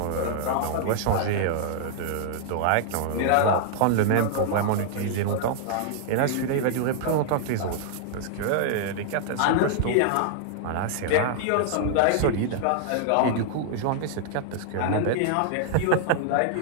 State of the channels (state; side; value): different; both; correlation -0.01